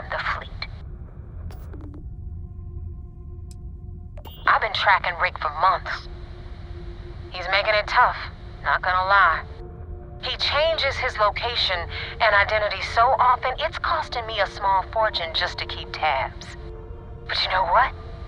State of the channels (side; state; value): both; identical; correlation 1.00